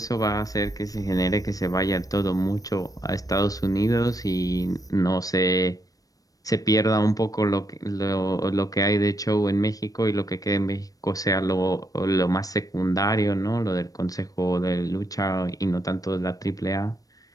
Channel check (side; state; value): right; late; 0.17 ms